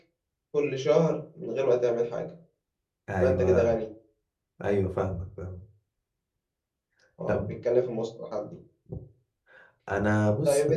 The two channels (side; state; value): both; identical; correlation 1.00